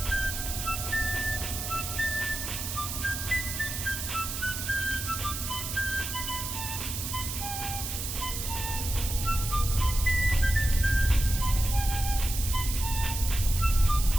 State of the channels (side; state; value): right; noise; hiss, 5 dB below the sound